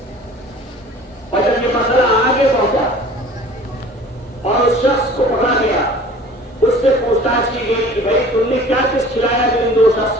اور جب یہ مسئلہ آگے پہنچا اور اس شخص کو پکڑا گیا، اس سے پوچھ تاچھ کی گئی کہ بھائی تم نے کیا کچھ کھلایا جو ان دو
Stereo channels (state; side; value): normal; both; correlation 0.46